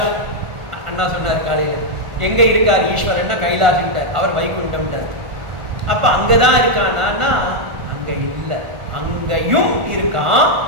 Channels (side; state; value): left; late; 1.5 ms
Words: அண்ணா சொன்னார் காலையில, எங்க இருக்கார் ஈஸ்வரன்னா கைலாஷ்ட்டார், அவர் வைகுண்டம்ட்டார். அப்ப அங்கதான் இருக்கானா? அங்க இல்லை, அங்கேயும் இருக்கான்.